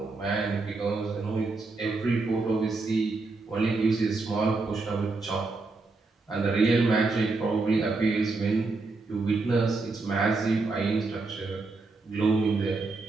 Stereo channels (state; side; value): quieter; left; 3.7 dB